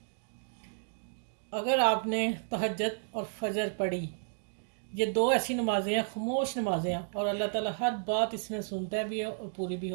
अगर आपने तहज्जुद और फजर पढ़ी, ये दो ऐसी नमाज़ें हैं, खामोश नमाज़ें हैं, और अल्लाह ताला हर बात इसमें सुनता भी है और पूरी भी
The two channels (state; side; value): silent; left; digital silence